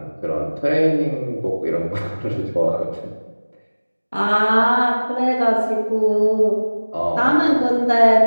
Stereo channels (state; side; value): inverted; both; correlation -1.00